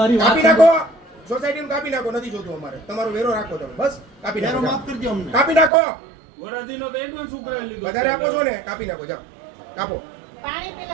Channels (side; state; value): left; drops out; at 5.7 s